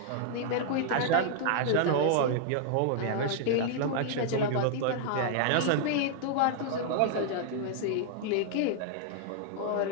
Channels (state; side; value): different; both; correlation -0.01